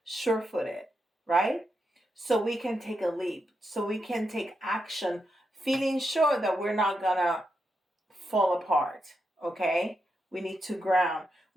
sure-footed, right? So we can take a leap, so we can take action, feeling sure that we're not gonna fall apart, okay? We need to ground.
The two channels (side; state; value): both; normal; correlation 0.85